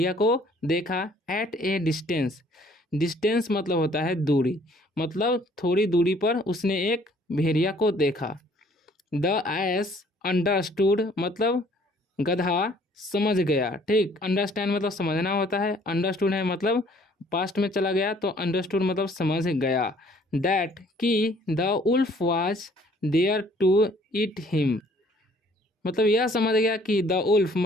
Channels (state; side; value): normal; both; correlation 0.59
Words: को देखा। एट ए डिस्टेंस, डिस्टेंस मतलब होता है दूरी, मतलब थोड़ी दूरी पर उसने एक भेड़िया को देखा। द एस अंडरस्टूड मतलब गधा समझ गया। ठीक, अंडरस्टैंड मतलब समझना होता है, अंडरस्टूड है मतलब पास्ट में चला गया तो अंडरस्टूड मतलब समझ गया। दैट कि the wolf was there to eat him मतलब यह समझ गया कि द उल्फ